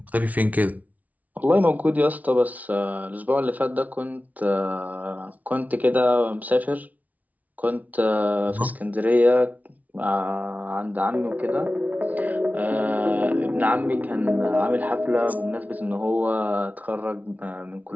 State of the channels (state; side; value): late; left; 0.072 ms